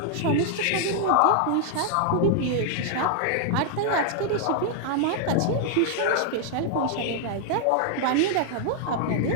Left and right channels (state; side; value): different; both; correlation 0.00